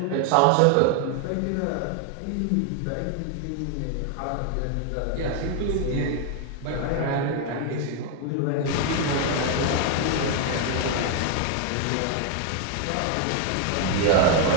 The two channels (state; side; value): different; both; correlation 0.00